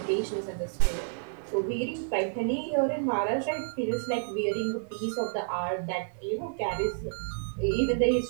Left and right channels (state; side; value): silent; left; 58 dB below the other